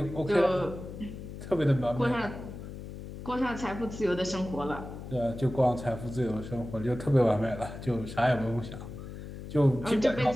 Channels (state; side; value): noise; left; hum, 11 dB below the sound